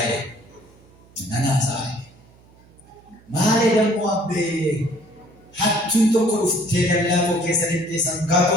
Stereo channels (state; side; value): noise; right; hum, 27 dB below the sound